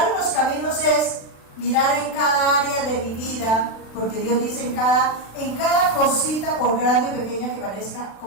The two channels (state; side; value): late; right; 36 ms